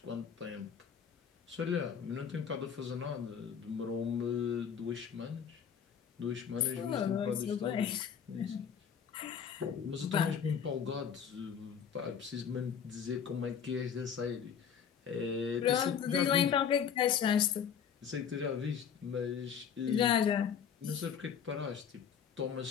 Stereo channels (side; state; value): right; quieter; 7.6 dB